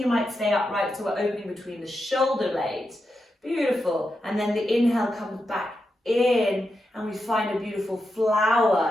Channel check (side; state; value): both; normal; correlation 0.87